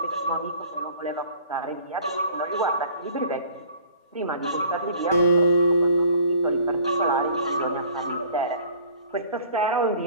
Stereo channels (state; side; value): inverted; both; correlation -0.51